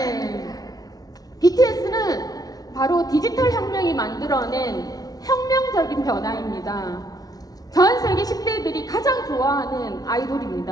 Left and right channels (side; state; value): right; late; 0.18 ms